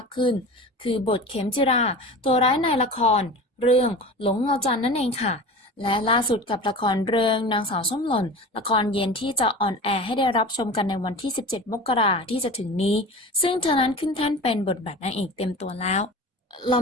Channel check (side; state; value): both; normal; correlation 0.34